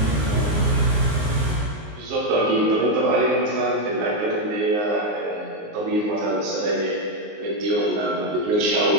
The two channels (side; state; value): left; late; 19 ms